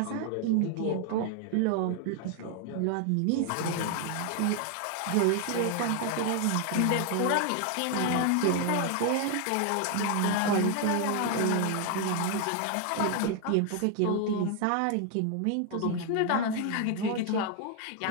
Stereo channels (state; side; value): different; both; correlation 0.00